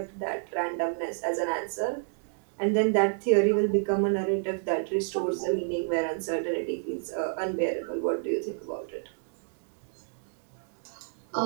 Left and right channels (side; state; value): left; silent; digital silence